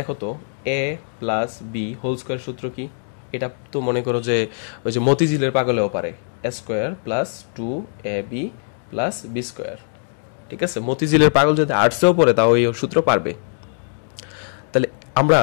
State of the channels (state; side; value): silent; right; digital silence